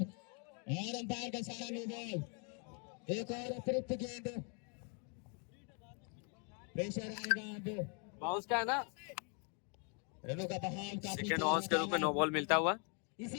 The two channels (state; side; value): quieter; right; 37.6 dB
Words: और अंपायर का सारा नो बॉल। एक और अतिरिक्त गेंद, प्रेशर आएगा अब। बाउंस का है ना, रनों का बहाव काफी सेकेंड बाउंस के रूप में नो बॉल मिलता हुआ।